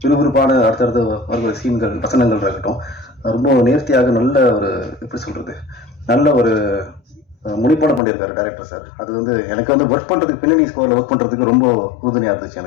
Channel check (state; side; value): drops out; right; at 8.0 s